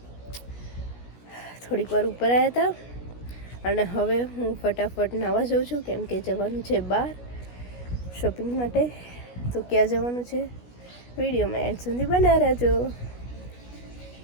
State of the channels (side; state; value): right; late; 16 ms